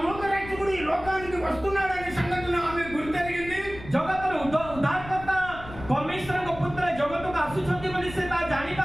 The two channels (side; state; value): left; noise; rumble, 14 dB below the sound